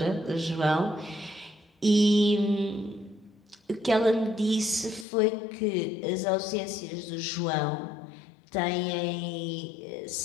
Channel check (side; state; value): right; drops out; at 5.1 s